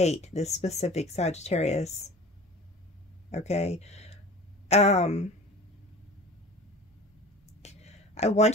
this specific Sagittarius. Okay. I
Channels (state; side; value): normal; both; correlation 0.40